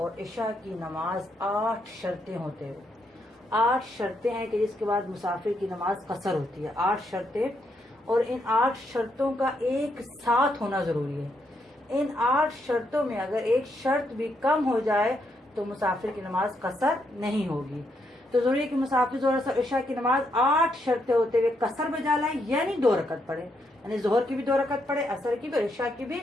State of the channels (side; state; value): both; normal; correlation 0.77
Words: عشاء کی نماز 8 شرطیں ہوتے ہیں۔ 8 شرطیں ہیں کہ جس کے بعد مسافر کی نماز قصر ہوتی ہے۔ 8 شرطیں، اور ان 8 شرطوں کا ایک ساتھ ہونا ضروری ہے۔ ان 8 شرطوں میں اگر ایک شرط بھی کم ہو جائے تو مسافر کی نماز قصر نہیں ہوگی۔ تو ضروری ہے کہ مسافر ظہر عصر عشاء کی نماز 8 شرطیں ہوتے ہوئے قصر بجا لائیں، یعنی 2 رکعت پڑھے، یعنی ظہر کی بھی 2 رکعت پڑھے، عصر کی بھی اور عشاء کی بھی